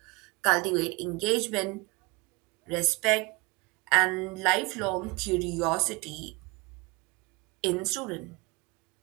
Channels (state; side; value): quieter; left; 25.8 dB